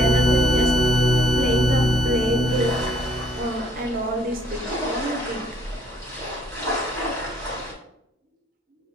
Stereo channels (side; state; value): both; normal; correlation 0.63